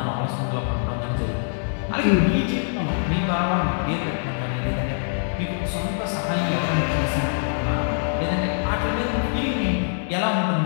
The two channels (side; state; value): right; silent; digital silence